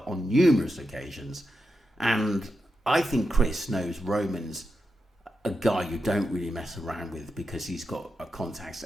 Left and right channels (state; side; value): normal; both; correlation 0.88